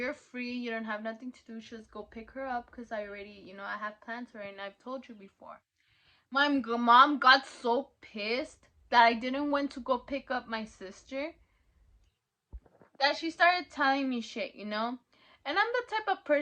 free. You don't have nothing to do. Just go pick her up because I already, you know, I have plans for her and I've told you before. My mom got so pissed that I didn't want to go pick up my sister that she started telling me shit, you know? And I'm the type of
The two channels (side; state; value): both; identical; correlation 1.00